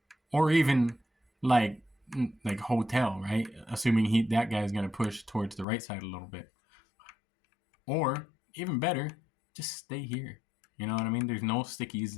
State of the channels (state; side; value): drops out; right; at 5.7 s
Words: Or even like hotel, right? Assuming that guy's going to push towards the right side a little bit. Or even better, just stay here. You know what I mean? There's no stickies